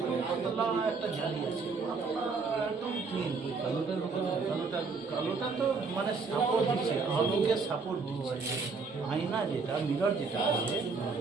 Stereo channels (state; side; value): quieter; left; 4.6 dB